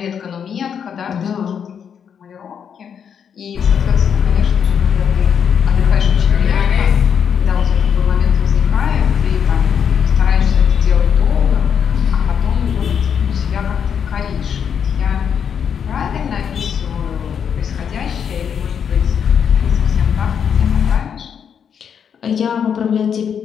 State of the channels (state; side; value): quieter; right; 7.6 dB